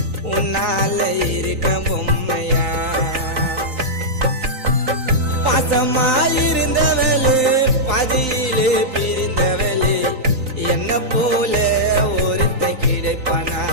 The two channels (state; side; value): late; left; 3.9 ms